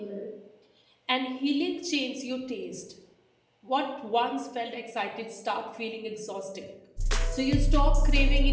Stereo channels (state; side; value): identical; both; correlation 1.00